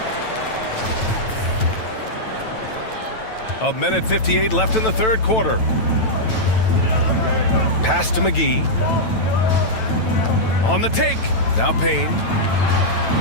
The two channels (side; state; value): right; late; 9.1 ms